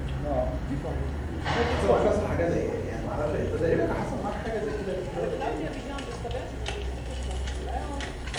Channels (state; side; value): identical; both; correlation 1.00